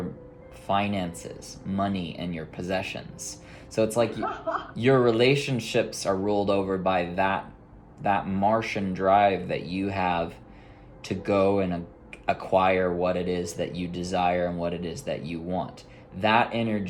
finances, money, and your possessions. So it's like your relationships are ruled over by that Martian drive that you have to go and acquire what it is that you desire and what it is that you want. That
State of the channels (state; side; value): identical; both; correlation 1.00